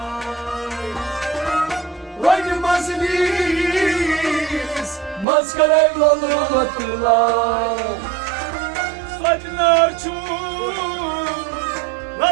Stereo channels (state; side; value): drops out; left; at 5.2 s